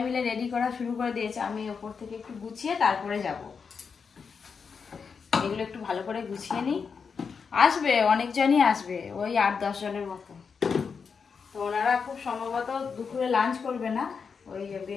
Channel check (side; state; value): right; quieter; 5.7 dB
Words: মিলে রেডি করা শুরু করে দিয়েছে। আমি ওপর থেকে একটু গুছিয়ে তারপরে যাব। এগুলো একটু ভালো করে গুছিয়ে নিই। আসবে অনেকজনই আসবে, ওই 8-10 জনের মতো। তো ওনারা খুব সম্ভবত দুপুরে লাঞ্চ করবে না, ওই